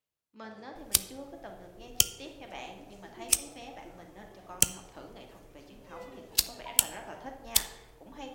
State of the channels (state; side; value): identical; both; correlation 1.00